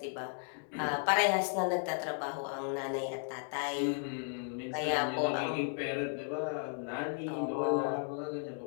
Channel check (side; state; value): right; silent; 55 dB below the other